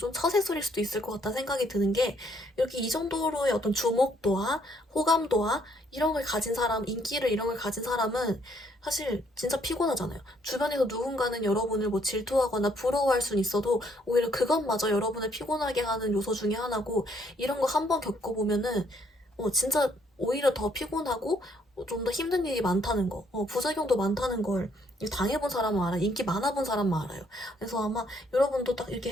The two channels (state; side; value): normal; both; correlation 0.68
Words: 처세술일 수도 있을 것 같다는 생각이 드는 게, 이렇게 이 정도로의 어떤 주목도와 호감도와 이런 걸 가진 사람, 인기를 이런 걸 가진 사람은 사실 진짜 피곤하잖아요. 주변에서 누군가는 여러분을 뭐 질투하거나 부러워할 수는 있어도 오히려 그것마저 여러분을 피곤하게 하는 요소 중에 하나고, 이런 거 한번 겪어보면은 진짜 오히려 더 피곤하고 좀 더 힘든 일이 많다는 거, 부작용도 많다는 걸 당해본 사람은 알아요. 인기 많아본 사람만 알아요. 그래서 아마 여러분도 딱 이렇게